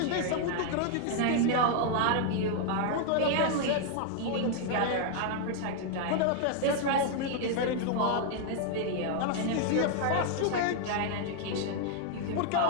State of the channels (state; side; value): different; both; correlation 0.00